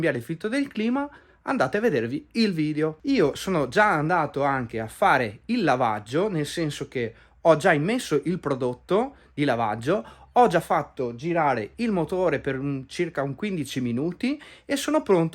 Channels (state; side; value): identical; both; correlation 1.00